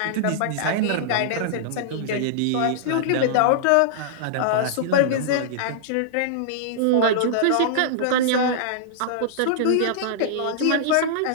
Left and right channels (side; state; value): both; different; correlation -0.02